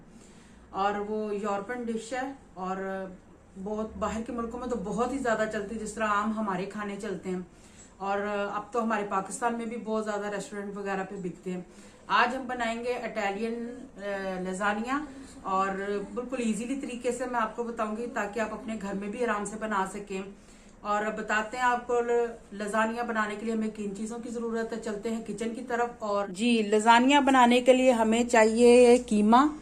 और वो यूरोपियन डिश है और बहुत बाहर के मुल्कों में तो बहुत ही ज्यादा चलती है, जिस तरह आम हमारे खाने चलते हैं। और अब तो हमारे पाकिस्तान में भी बहुत ज्यादा रेस्टोरेंट वगैरह पे बिकते हैं। आज हम बनाएंगे इटालियन लजानिया और बिल्कुल इजीली तरीके से मैं आपको बताऊंगी ताकि आप अपने घर में भी आराम से बना सकें। और बताते हैं आपको लजानिया बनाने के लिए हमें किन चीजों की जरूरत है। चलते हैं किचन की तरफ। और जी लजानिया बनाने के लिए हमें चाहिए कीमा।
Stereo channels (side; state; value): both; identical; correlation 1.00